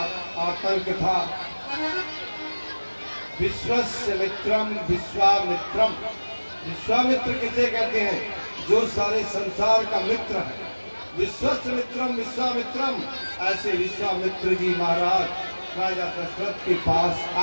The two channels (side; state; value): both; inverted; correlation -1.00